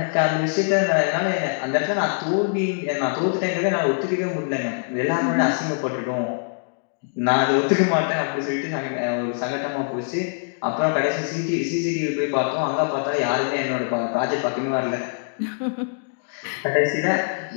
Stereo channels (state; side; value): silent; right; digital silence